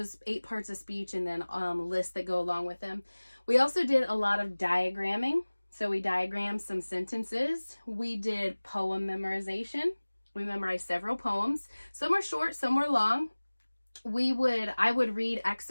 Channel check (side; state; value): both; inverted; correlation -1.00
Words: 8 parts of speech and then lists that go along with them. We also did a lot of diagramming. So we diagrammed some sentences. We did poem memorization. We memorized several poems. Some were short, some were long. I would read